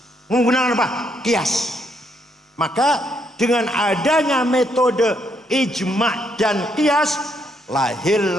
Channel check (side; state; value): both; normal; correlation 0.74